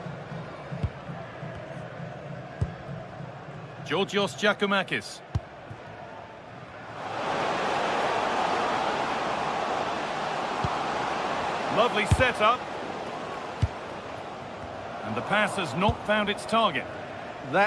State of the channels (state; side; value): identical; both; correlation 1.00